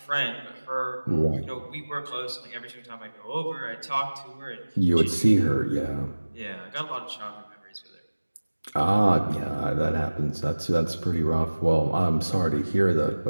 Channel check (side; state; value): both; inverted; correlation -1.00